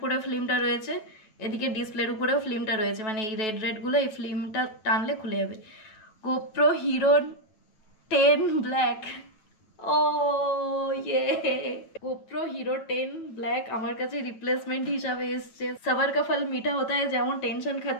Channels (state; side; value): late; right; 9.2 ms